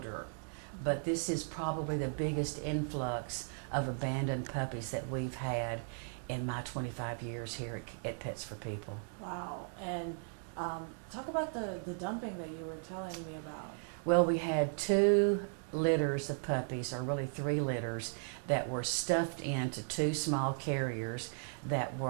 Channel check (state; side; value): silent; left; 53 dB below the other